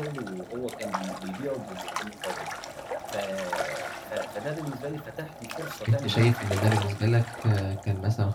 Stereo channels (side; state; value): both; identical; correlation 1.00